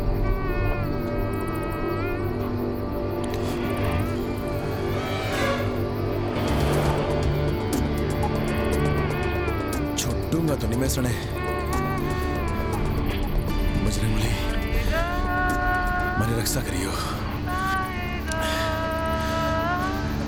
छुट्टूंगा तो नहीं मैं सने। बजरंग बली, मेरी रक्षा करियो।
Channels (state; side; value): identical; both; correlation 1.00